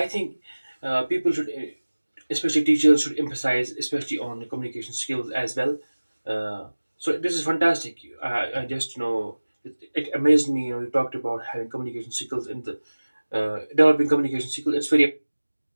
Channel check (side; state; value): both; inverted; correlation -1.00